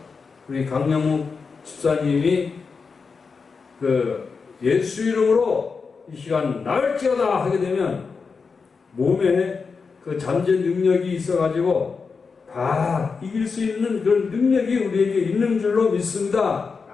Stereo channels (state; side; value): quieter; right; 5.0 dB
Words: 우리 강영욱 집사님이 그 예수 이름으로 이 시간 나을지어다 하게 되면 몸에 그 잠재 능력이 있어가지고 다 이길 수 있는 그런 능력이 우리에게 있는 줄로 믿습니다.